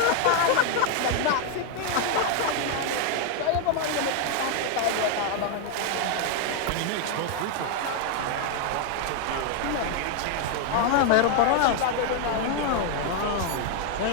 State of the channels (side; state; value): both; different; correlation 0.00